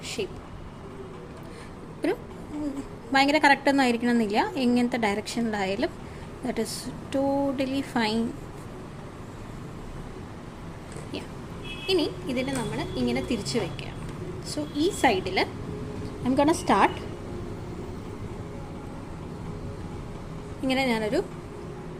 ഷേപ്പ്. ഒരു ഭയങ്കര കറക്റ്റൊന്നും ആയിരിക്കണം എന്നില്ല, എങ്ങനത്തെ ഡയറക്ഷനിലായാലും ദാറ്റ് ഈസ് ടോട്ടലി ഫൈൻ. ഇനി ഇതിനെ നമ്മൾ ഇങ്ങനെ തിരിച്ച് വയ്ക്കുക. സോ ഈ സൈഡിൽ ഐ എം ഗോണ സ്റ്റാർട്ട്. ഇങ്ങനെ ഞാനൊരു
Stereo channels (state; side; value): identical; both; correlation 1.00